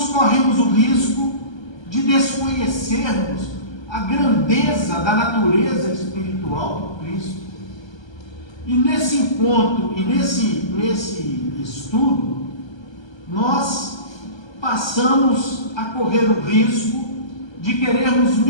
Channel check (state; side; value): late; right; 1.3 ms